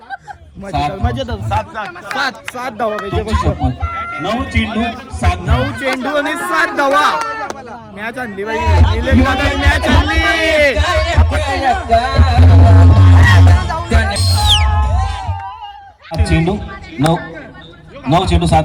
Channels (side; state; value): both; identical; correlation 1.00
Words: मजेदार 7 धावा पाहिजे. 9 चेंडू 9 आणि 7 धावा. मॅच आणली बाई. निलेश दादा मॅच आणली. चेंडू 9 चेंडू 7